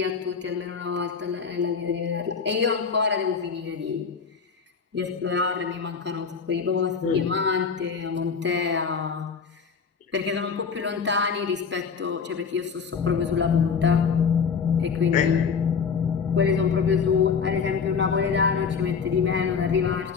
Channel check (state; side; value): quieter; right; 5.9 dB